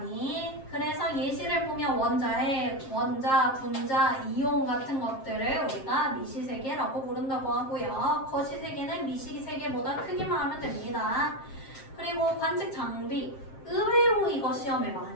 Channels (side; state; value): right; late; 7.5 ms